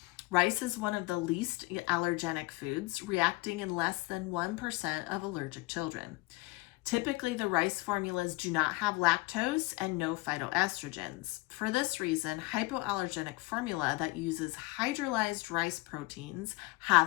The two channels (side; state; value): right; quieter; 22.8 dB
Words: Rice is one of the least allergenic foods, reacting in less than 1% of allergic children. Typically, the rice formulas do not have lactose and no phytoestrogens. For this reason, hypoallergenic formula that uses hydrolyzed rice proteins